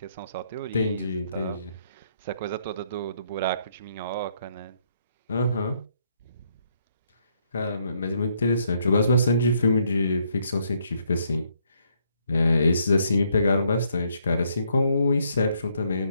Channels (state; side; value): inverted; both; correlation -0.72